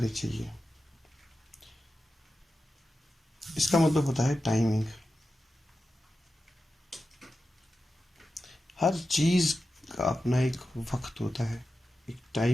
चाहिए। इसका मतलब होता है टाइमिंग। हर चीज़ का अपना एक वक्त होता है, एक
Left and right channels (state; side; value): normal; both; correlation 0.92